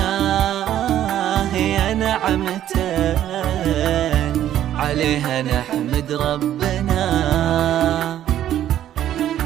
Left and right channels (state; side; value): quieter; left; 11.6 dB